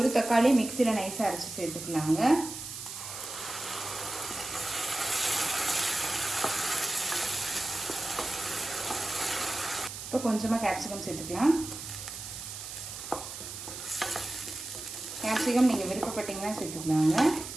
தக்காளி மிக்சியில் நைஸாக அரைச்சி சேர்த்துக்கலாங்க. இப்போ கொஞ்சமாக கேப்சிகம் சேர்த்துக்கலாம். கேப்சிகம் நீங்கள் விருப்பப்பட்டீங்கன்னா சேர்த்துக்கலாங்க.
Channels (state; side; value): noise; right; hiss, 9 dB below the sound